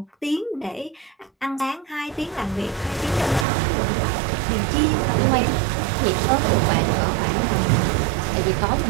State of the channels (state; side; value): drops out; left; at 3.5 s